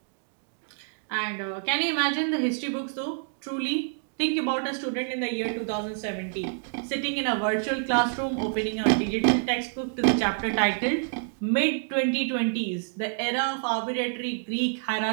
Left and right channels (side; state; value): left; silent; digital silence